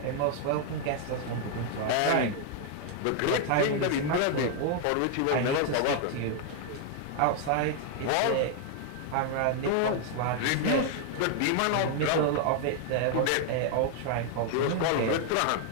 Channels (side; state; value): both; different; correlation 0.00